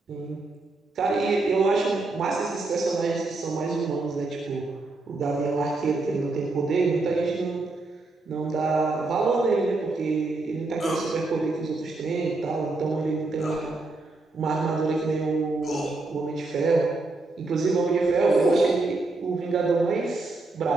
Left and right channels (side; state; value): left; quieter; 3.3 dB